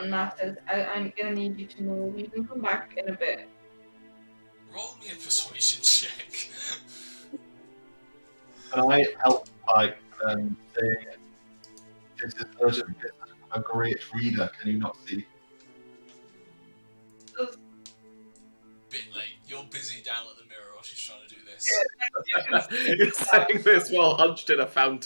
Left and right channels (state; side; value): inverted; both; correlation -1.00